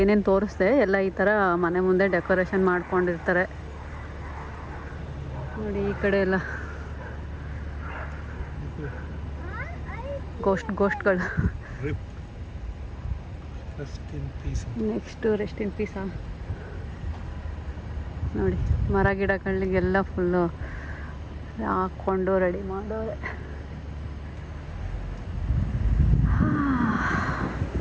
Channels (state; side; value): identical; both; correlation 1.00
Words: ತೋರಿಸ್ದೆ ಎಲ್ಲ ಈ ಥರ ಮನೆ ಮುಂದೆ ಡೆಕೋರೇಷನ್ ಮಾಡ್ಕೊಂಡಿರ್ತಾರೆ ನೋಡಿ. ಈ ಕಡೆ ಎಲ್ಲ ಗೋಸ್ಟ್ಗಳು. ನೆಕ್ಸ್ಟು ರೆಸ್ಟ್ ಇನ್ ಪೀಸಾ ನೋಡಿ. ಮರ ಗಿಡಗಳಿಗೆಲ್ಲ ಫುಲ್ಲು ಹಾಕ್ಕೊಂಡು ರೆಡಿ ಮಾಡೋರೆ.